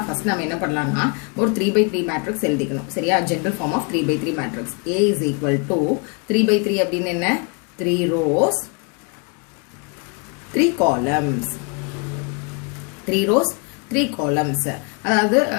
ஃபர்ஸ்ட் நாம என்ன பண்ணலாம்னா ஒரு 3 by 3 matrix எழுதிக்கணும் சரியா general form of 3 by 3 matrix a is equal to 3 by 3 அப்படினா என்ன 3 rows 3 columns 3 rows 3 columns அதாவது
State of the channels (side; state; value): right; quieter; 33.6 dB